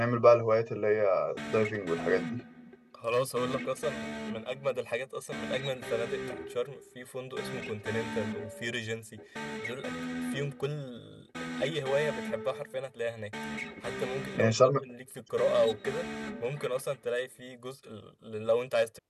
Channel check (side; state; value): both; identical; correlation 1.00